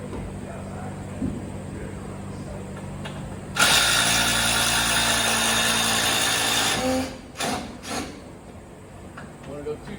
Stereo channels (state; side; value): identical; both; correlation 1.00